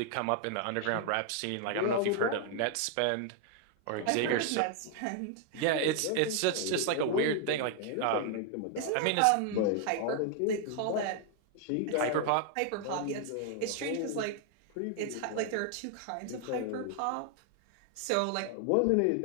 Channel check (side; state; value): both; different; correlation 0.00